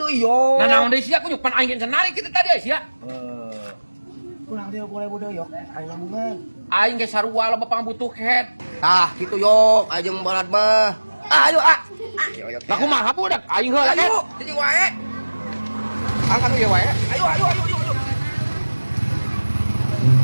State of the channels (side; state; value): both; inverted; correlation -1.00